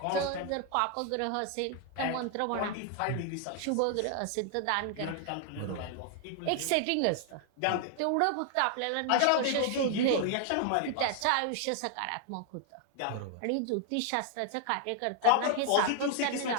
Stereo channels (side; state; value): both; different; correlation 0.00